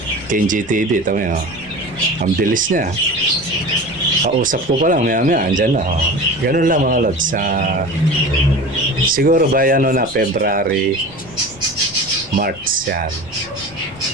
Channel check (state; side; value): noise; left; rumble, 20 dB below the sound